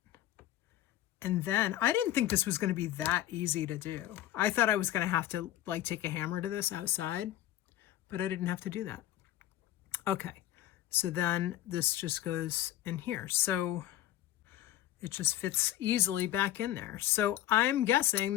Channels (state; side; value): quieter; right; 13.5 dB